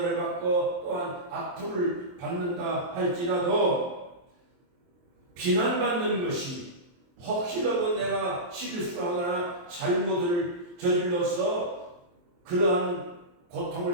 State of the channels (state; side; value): late; left; 23 ms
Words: 받고 또한 악플을 받는다 할지라도 비난받는 것이 혹시라도 내가 실수하거나 잘못을 저질러서 그러한